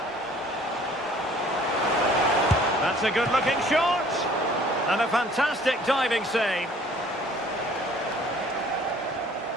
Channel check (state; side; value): normal; both; correlation 0.55